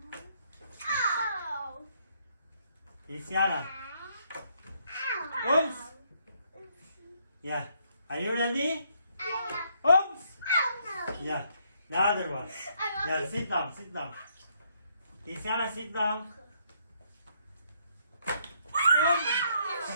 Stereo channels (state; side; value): inverted; both; correlation -0.71